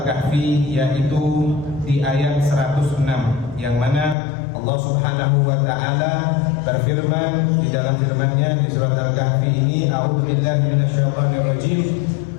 yaitu di ayat 106, yang mana Allah Subhanahu wa taala berfirman di dalam firman-Nya di surat Al-Kahfi ini, a'udzubillahi minasyaitonirrajim.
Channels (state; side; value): drops out; right; at 4.2 s